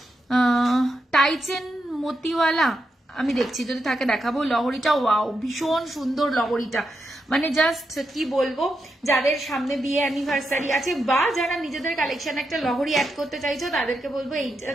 টাইচেন মতিওয়ালা আমি দেখছি, যদি থাকে দেখাবো। লহরিটা ওয়াও, ভীষণ সুন্দর লহরিটা, মানে জাস্ট কি বলবো, যাদের সামনে বিয়ে অ্যানিভার্সারি আছে বা যারা নিজেদের কালেকশন একটা লহরি অ্যাড করতে চাইছো তাদেরকে বলবো এইটা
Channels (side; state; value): both; normal; correlation 0.85